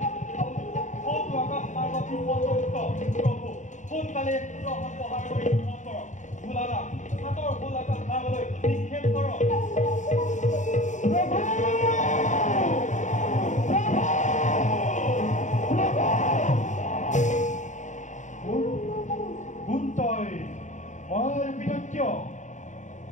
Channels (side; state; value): right; late; 0.35 ms